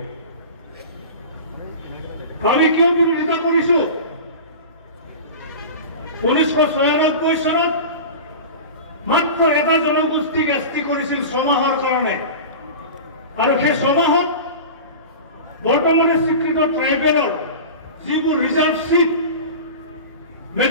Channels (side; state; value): both; inverted; correlation -0.32